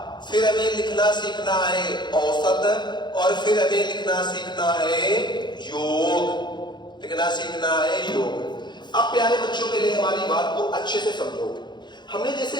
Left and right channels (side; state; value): right; late; 0.21 ms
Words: फिर हमें लिखना सीखना है औसत और फिर हमें लिखना सीखना है योग। लिखना सीखना है योग। अब प्यारे बच्चों के लिए हमारी बात को अच्छे से समझो। हमने